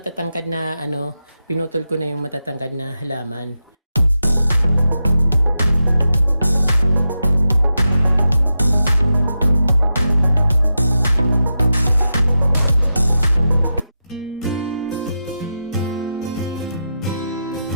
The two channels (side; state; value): both; inverted; correlation -0.88